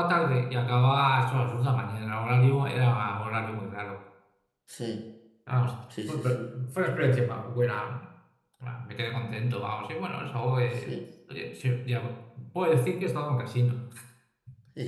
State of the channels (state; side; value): identical; both; correlation 1.00